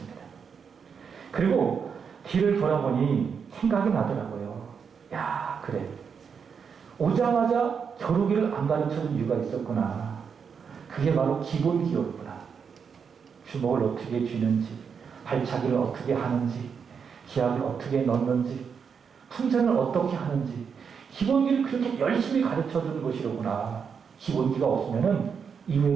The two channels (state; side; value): quieter; left; 6.5 dB